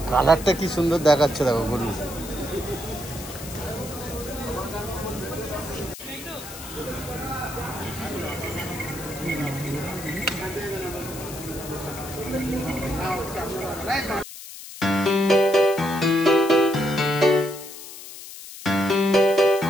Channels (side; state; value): left; noise; hiss, 13 dB below the sound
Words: কালারটা কি সুন্দর দেখাচ্ছে, দেখো গরু।